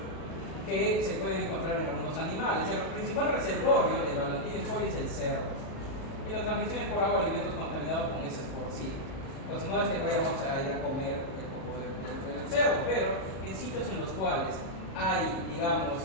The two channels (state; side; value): late; right; 37 ms